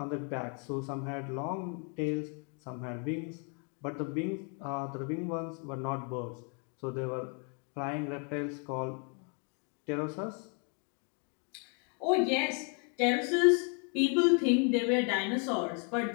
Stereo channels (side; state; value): right; quieter; 39.0 dB